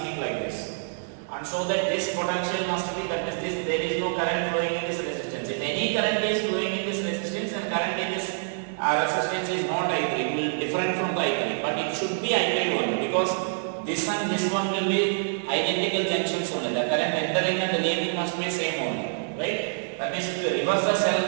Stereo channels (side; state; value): left; silent; digital silence